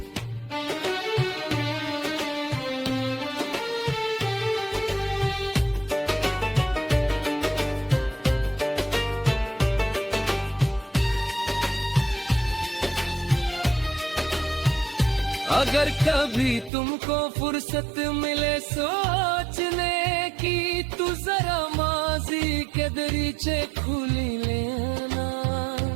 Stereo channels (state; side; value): drops out; left; at 16.7 s